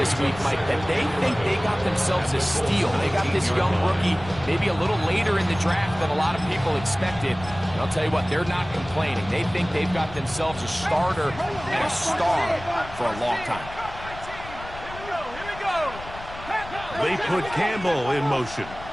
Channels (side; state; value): left; noise; rumble, 15 dB below the sound